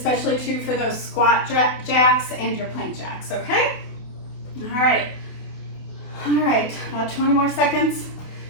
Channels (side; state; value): right; late; 28 ms